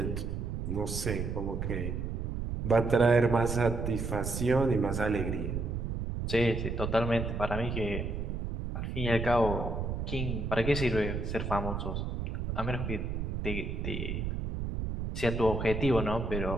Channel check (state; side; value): noise; right; rumble, 3 dB below the sound